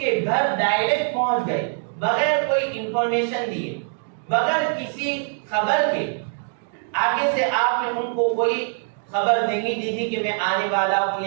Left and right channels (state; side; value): silent; left; 62 dB below the other